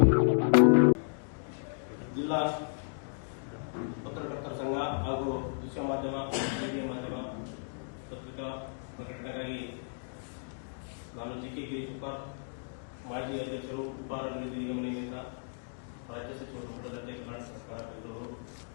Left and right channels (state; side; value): silent; right; digital silence